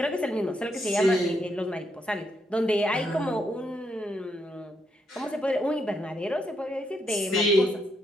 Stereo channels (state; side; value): normal; both; correlation 0.78